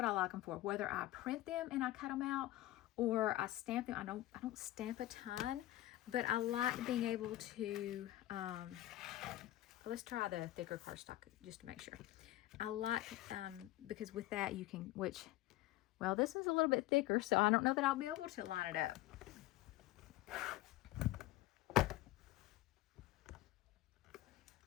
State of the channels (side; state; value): right; quieter; 16.2 dB